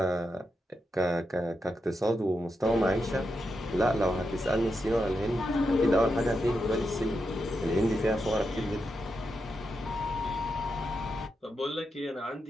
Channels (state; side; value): normal; both; correlation 0.86